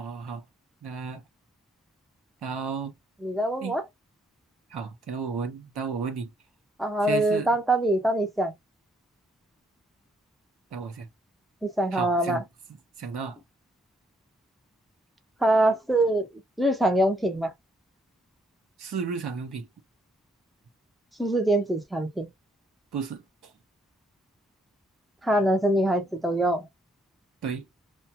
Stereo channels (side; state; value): both; normal; correlation 0.70